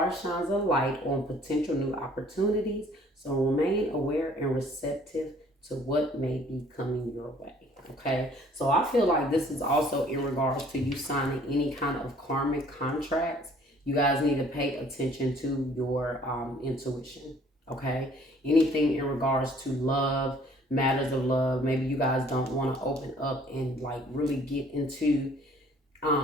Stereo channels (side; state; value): both; normal; correlation 0.57